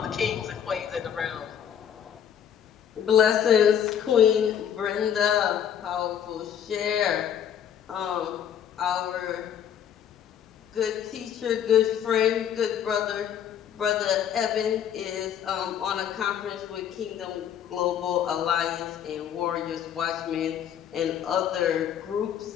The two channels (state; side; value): quieter; right; 9.1 dB